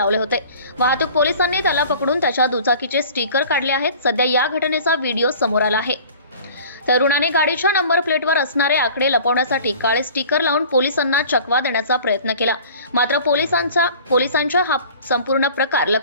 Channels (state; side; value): inverted; both; correlation -0.45